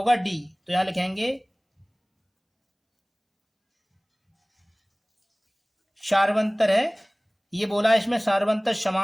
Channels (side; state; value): both; identical; correlation 1.00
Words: डी। तो यहां लिखेंगे सार्वंतर है, ये बोला है इसमें सार्वंतर